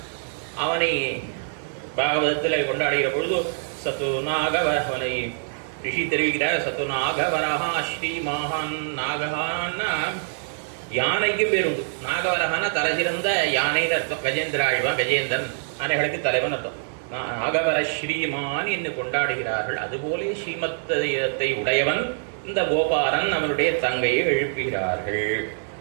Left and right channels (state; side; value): silent; left; digital silence